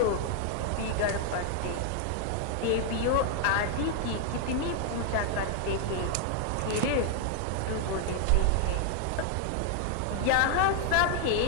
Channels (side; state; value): both; different; correlation 0.00